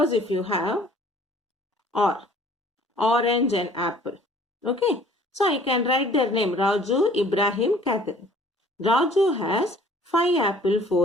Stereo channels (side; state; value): both; normal; correlation 0.54